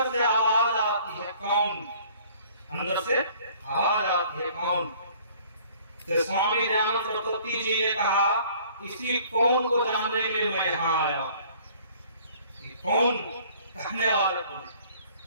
से आवाज आती है, कौन? अंदर से आवाज आती है, कौन? तो स्वामी दयानंद सरस्वती जी ने कहा इसी कौन को जानने के लिए मैं यहाँ आया हूँ। कौन कहने वाला कौन?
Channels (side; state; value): both; inverted; correlation -0.55